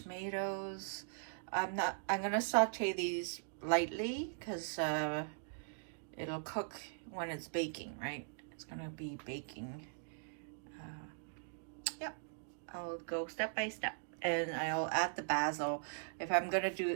I'm gonna saute these lightly because it'll cook when it's baking, right? It's gonna be baking. Yep, I'll go step by step, and I'll add the basil. If I'm gonna do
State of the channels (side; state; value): left; silent; digital silence